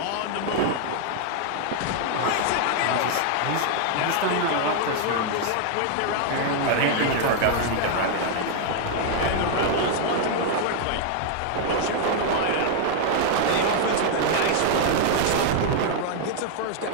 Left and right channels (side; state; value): both; different; correlation 0.00